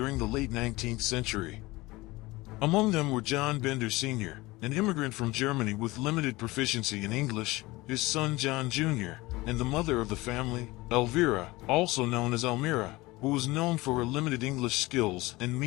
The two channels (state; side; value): quieter; right; 20.9 dB